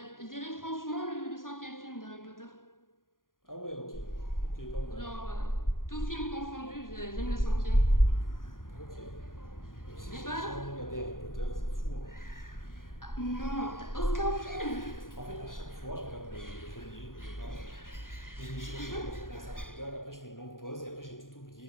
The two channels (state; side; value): late; right; 0.90 ms